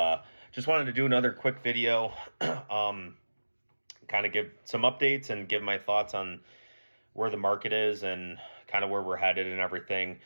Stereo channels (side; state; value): both; inverted; correlation -1.00